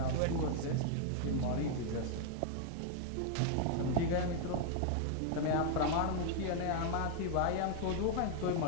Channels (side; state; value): both; different; correlation 0.00